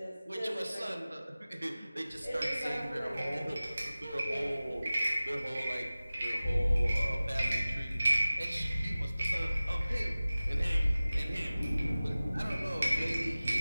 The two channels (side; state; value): both; inverted; correlation -0.97